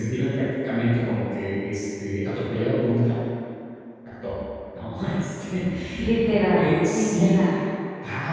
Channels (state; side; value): identical; both; correlation 1.00